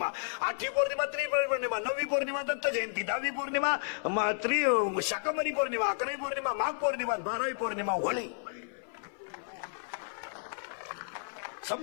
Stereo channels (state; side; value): silent; right; 56 dB below the other